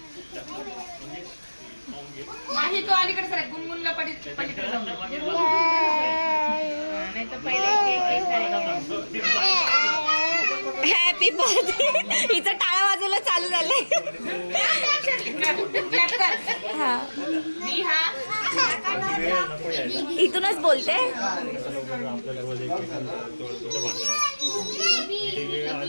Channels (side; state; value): both; inverted; correlation -1.00